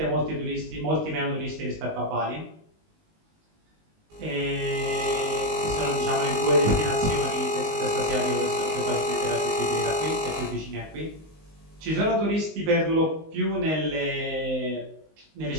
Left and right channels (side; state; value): left; late; 19 ms